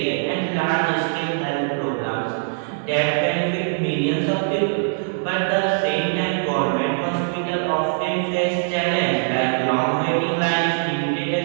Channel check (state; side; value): silent; left; digital silence